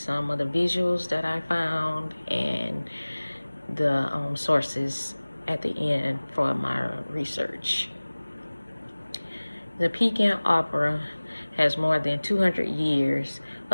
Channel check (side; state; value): both; inverted; correlation -1.00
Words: of the visuals that I found and the sources at the end for my research. The Peking Opera has more than 200 years